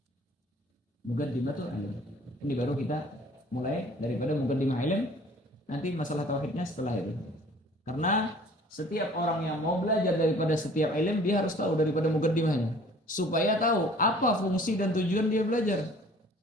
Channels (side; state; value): both; normal; correlation 0.51